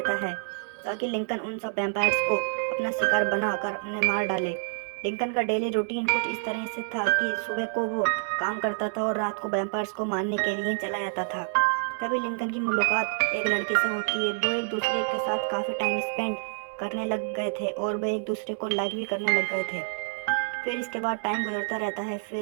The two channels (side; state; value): left; silent; 60 dB below the other